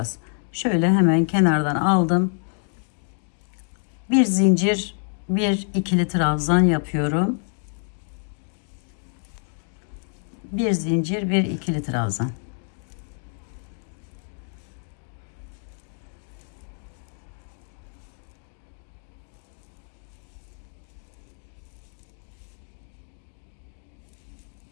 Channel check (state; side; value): silent; right; 60 dB below the other